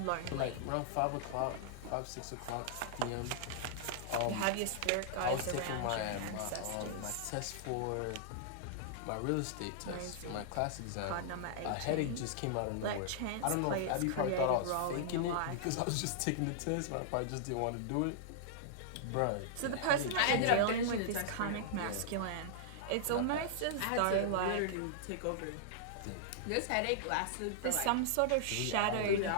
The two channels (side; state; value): both; different; correlation -0.01